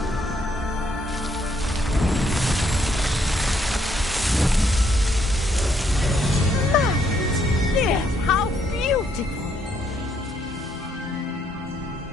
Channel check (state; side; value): normal; both; correlation 0.72